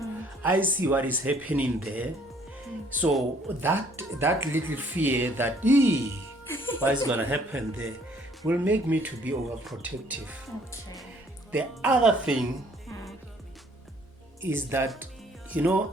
I see what is happening there. So that little fear that what is gonna happen there will make me to be overprotective. Okay. The other thing is that you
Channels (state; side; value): normal; both; correlation 0.61